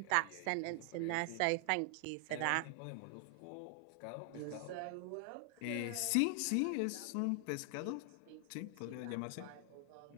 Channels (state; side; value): different; both; correlation 0.00